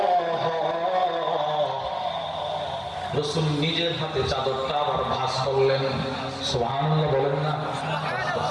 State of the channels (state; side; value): identical; both; correlation 1.00